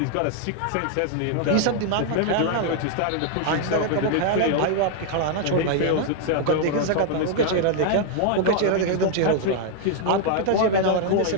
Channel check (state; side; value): different; both; correlation 0.00